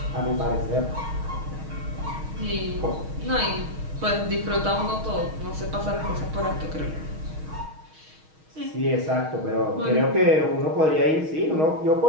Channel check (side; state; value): left; late; 6.4 ms